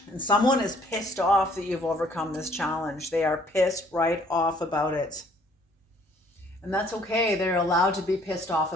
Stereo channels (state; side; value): normal; both; correlation 0.60